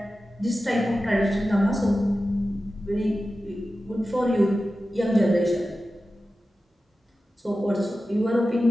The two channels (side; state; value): both; normal; correlation 0.94